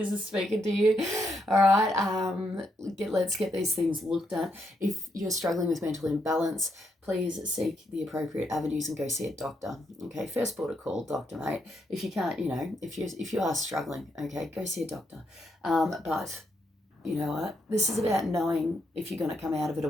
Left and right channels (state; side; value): normal; both; correlation 0.79